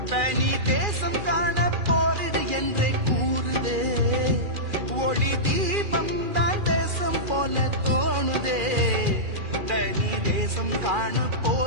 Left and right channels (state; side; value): late; left; 2.4 ms